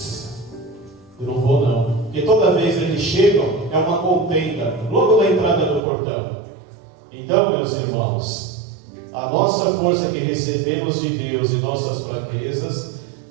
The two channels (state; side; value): drops out; left; at 5.8 s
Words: Eu não vou não. Porque toda vez eles chegam, é uma contenda, logo na entrada do portão. Então, meus irmãos, a nossa força que recebemos de Deus e nossas fraquezas